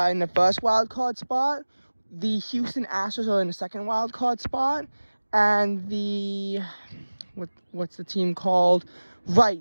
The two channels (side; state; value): both; inverted; correlation -1.00